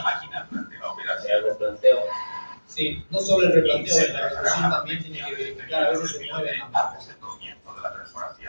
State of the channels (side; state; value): both; inverted; correlation -1.00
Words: máquina durante la operación. El replanteo. Sí, no solo el replanteo, Se en la tratará ejecución una también tiene que protección verificar, a veces se mueven las manos. antes del comienzo de la